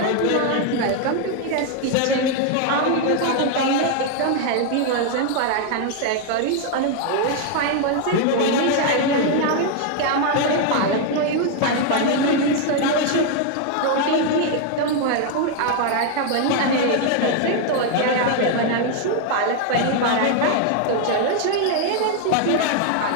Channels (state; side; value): different; both; correlation 0.00